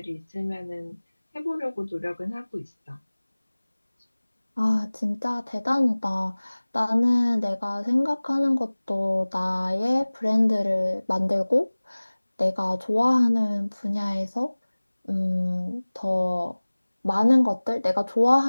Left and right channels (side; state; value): both; inverted; correlation -1.00